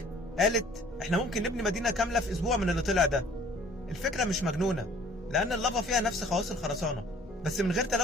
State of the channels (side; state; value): both; normal; correlation 0.54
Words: قالت احنا ممكن نبني مدينة كاملة في اسبوع من اللي طلع ده. الفكرة مش مجنونة، لان اللافا فيها نفس خواص الخرسانة بس من غير